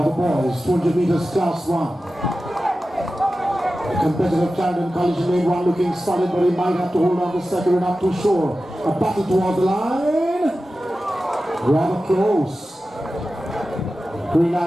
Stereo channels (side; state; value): both; normal; correlation 0.94